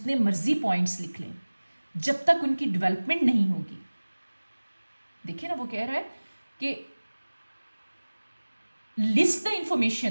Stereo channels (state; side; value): inverted; both; correlation -1.00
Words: मर्जी पॉइंट्स लिख लें, जब तक उनकी डेवलपमेंट नहीं होगी, देखिए ना वो कह रहा है कि list the